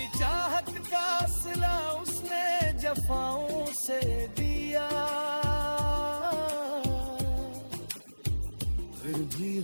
चाहत का सिला उसने जफाओं से दिया, फिर भी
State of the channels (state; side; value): inverted; both; correlation -1.00